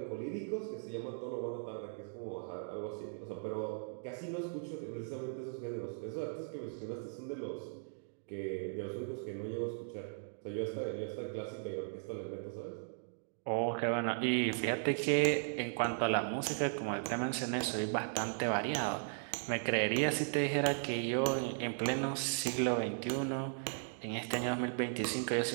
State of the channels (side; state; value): left; silent; digital silence